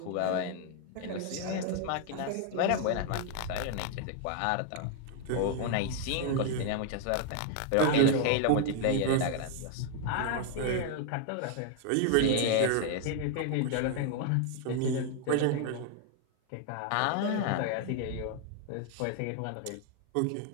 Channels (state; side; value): different; both; correlation 0.00